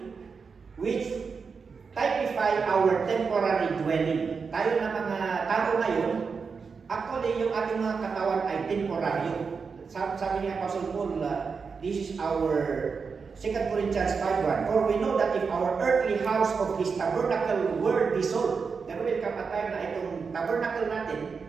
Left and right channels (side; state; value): left; quieter; 5.3 dB